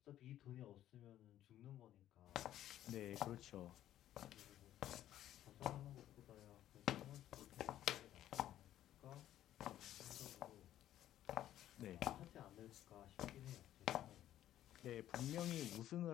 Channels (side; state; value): right; quieter; 12.4 dB